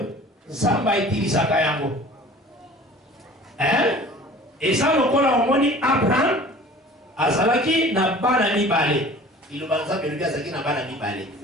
Zamba utilise ça yango. Hein? Et ça, le col a moni Abraham, Azalaki n'a pas d'ami balé. Il va nous appeler Azaki n'a pas d'ami balé.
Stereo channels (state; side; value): normal; both; correlation 0.45